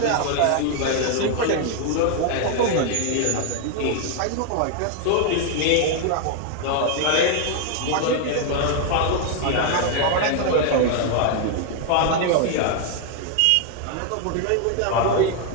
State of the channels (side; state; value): both; different; correlation 0.00